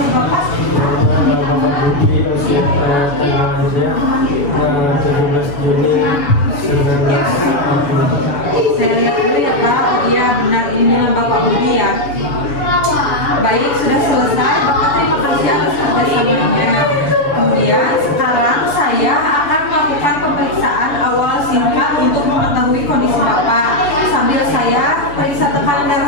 Bapak. Bapak Budi usia tanggal lahirnya 17 Juni 1960. Saya lihat dulu ya Pak. Oh iya benar, ini dengan Bapak Budi ya. Baik, sudah selesai. Bapak terima kasih atas kerjasamanya. Kemudian sekarang saya akan melakukan pemeriksaan awal singkat untuk mengetahui kondisi Bapak. Sambil saya periksa tekanan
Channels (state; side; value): late; right; 7.0 ms